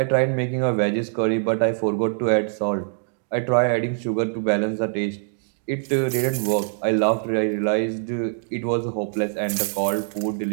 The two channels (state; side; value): silent; left; digital silence